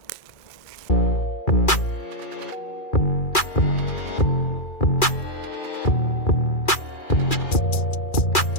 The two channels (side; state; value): right; late; 2.4 ms